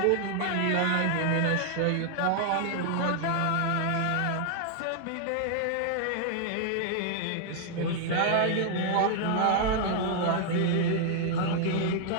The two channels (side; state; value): both; different; correlation 0.00